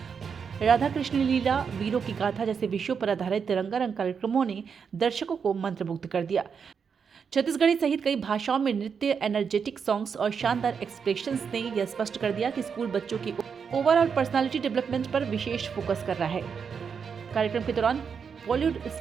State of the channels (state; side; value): quieter; left; 6.4 dB